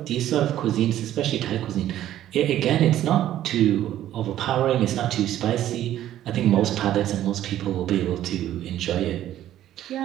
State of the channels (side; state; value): left; quieter; 12.5 dB